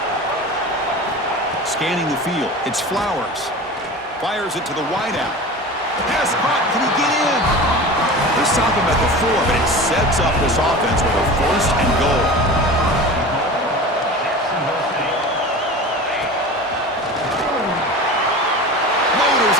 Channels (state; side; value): normal; both; correlation 0.33